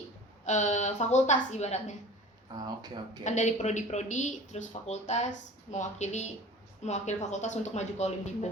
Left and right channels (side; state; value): both; normal; correlation 0.41